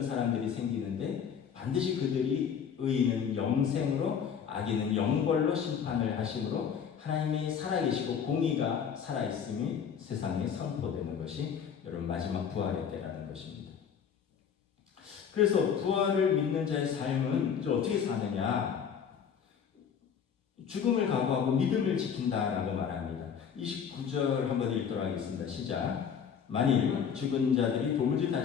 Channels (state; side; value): quieter; right; 7.5 dB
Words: 사람들이 생기는데 반드시 그들이 의인은 영생으로 악인은 영벌로 심판을 하심으로 하나님이 살아계시고 공의가 살아있음이 세상에 선포되는 것이 여러분 마지막 부활의 때라는 것입니다. 그래서 부활을 믿는 자의 삶은 이제 어떻게 사느냐? 죽음을 각오하고 믿음을 지킨다라고 말합니다. 29절 한번 읽도록 하겠습니다. 시작. 만일 죽은 자들이 도무지